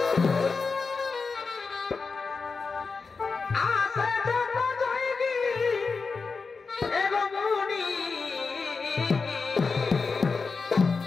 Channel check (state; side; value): quieter; right; 4.6 dB